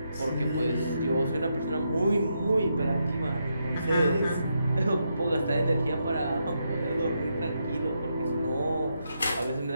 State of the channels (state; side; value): inverted; both; correlation -0.82